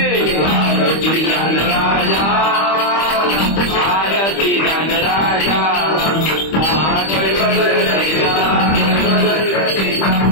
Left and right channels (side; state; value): right; late; 25 ms